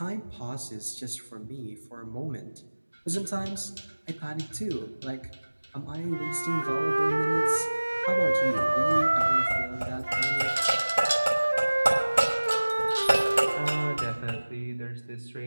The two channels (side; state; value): both; inverted; correlation -1.00